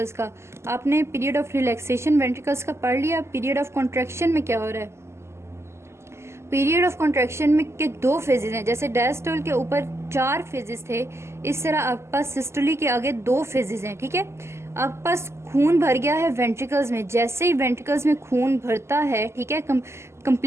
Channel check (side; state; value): left; late; 0.13 ms